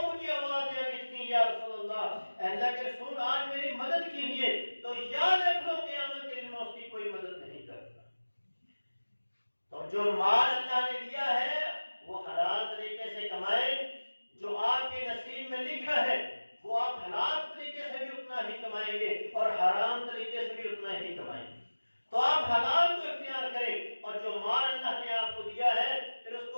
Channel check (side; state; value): both; inverted; correlation -1.00